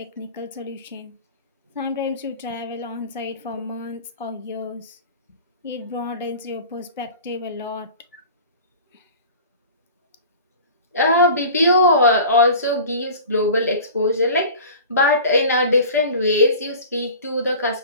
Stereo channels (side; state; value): both; inverted; correlation -0.39